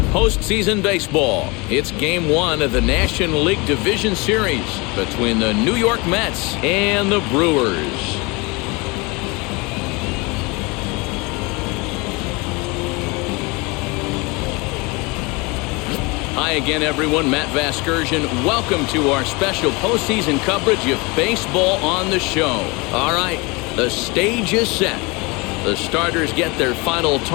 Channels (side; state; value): right; quieter; 26.6 dB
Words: postseason baseball. It's Game 1 of the National League Division Series between the New York Mets and the Brewers. Hi again, everyone. Matt Vasgersian. Welcome to our special postseason coverage of Baseball on the Show. All right, the stage is set. The starters get their final